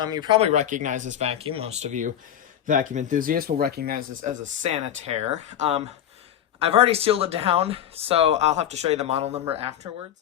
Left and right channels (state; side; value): quieter; right; 10.4 dB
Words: you probably recognize this vacuum. Most of you vacuum enthusiasts will recognize this as a sanitaire. I've already sealed it down, so I'll have to show you the model number afterwards.